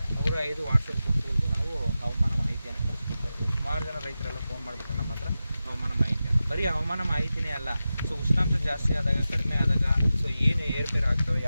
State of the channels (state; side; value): inverted; both; correlation -0.93